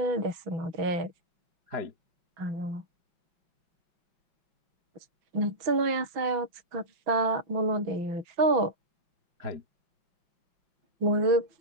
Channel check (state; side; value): late; left; 6.1 ms